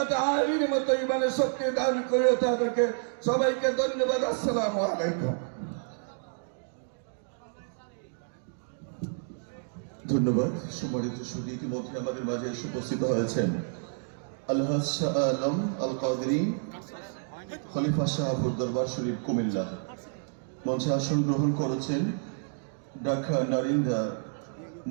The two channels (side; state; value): left; silent; digital silence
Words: আলীর মতো ইমানের শক্তি দান করিও তাদেরকে। সবাইকে ধন্যবাদ। আসসালামু আলাইকুম। ধন্যবাদ। সম্মানিত সুধী, ইতিমধ্যে আমাদের মাঝে এসে উপস্থিত হয়েছেন আলহাজ শাহ আলম আল কাদেরী, খলিফা শাহপুর দরবার শরীফ, কুমিল্লা। মঞ্চে আসন গ্রহণ করেছেন ঢাকা নারিন্দা